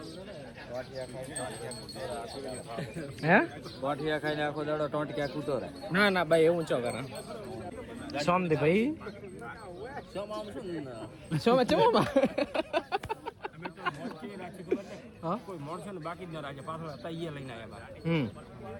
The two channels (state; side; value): identical; both; correlation 1.00